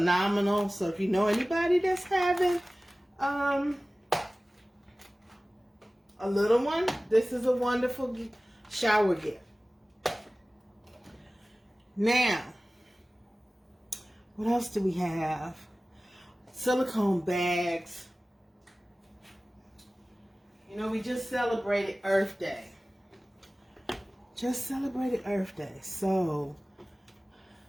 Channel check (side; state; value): both; normal; correlation 0.97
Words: So if you know anybody that's having a little one, this is a wonderful shower gift. Now, what else do we have? Silicone bags. You know, we just celebrated Earth Day. So,